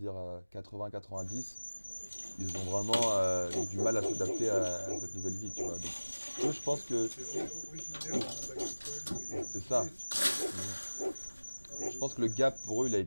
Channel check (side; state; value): both; inverted; correlation -1.00